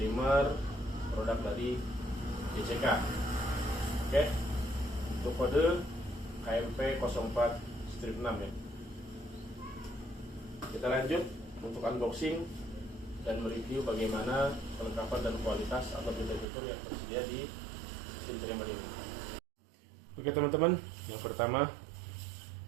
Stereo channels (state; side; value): drops out; left; at 16.4 s